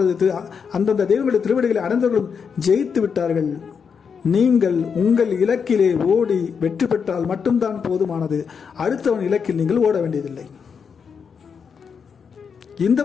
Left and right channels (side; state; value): right; quieter; 6.3 dB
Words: அந்தந்த தெய்வங்களுடைய திருவடிகளை அடைந்தவர்களும் ஜெயித்து விட்டார்கள். நீங்கள் உங்கள் இலக்கிலே ஓடி வெற்றி பெற்றால் மட்டும்தான் போதுமானது. அடுத்தவன் இலக்கில் நீங்கள் ஓட வேண்டியதில்லை. இந்த